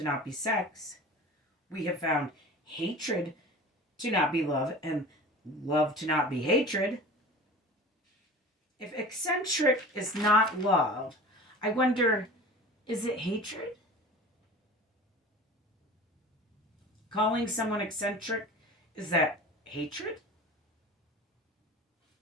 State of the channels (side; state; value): both; normal; correlation 0.38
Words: not be sex. We have found hatred to not be love and love to not be hatred. If eccentric is not love, I wonder, is it hatred? Calling someone eccentric, is that hatred?